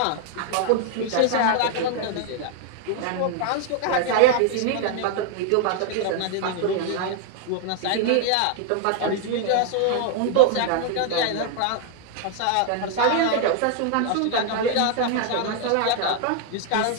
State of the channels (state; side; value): different; both; correlation 0.00